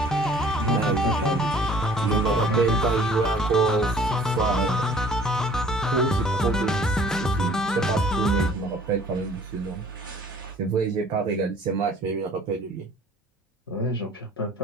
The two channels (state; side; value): normal; both; correlation 0.52